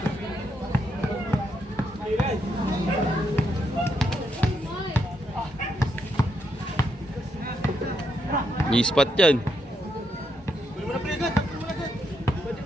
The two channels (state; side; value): normal; both; correlation 0.79